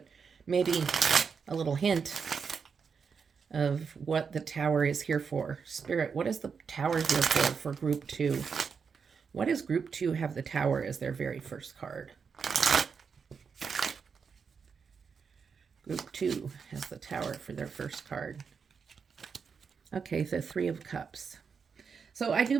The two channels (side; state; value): left; quieter; 5.9 dB